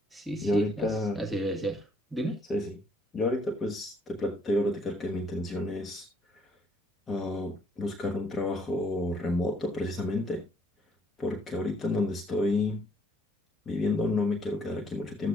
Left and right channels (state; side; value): normal; both; correlation 0.66